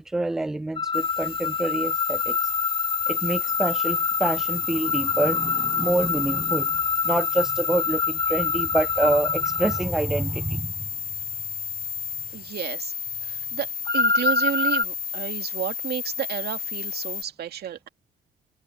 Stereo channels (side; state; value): both; normal; correlation 0.28